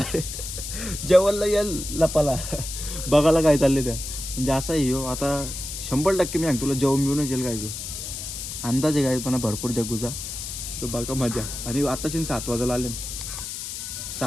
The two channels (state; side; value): noise; left; hiss, 7 dB below the sound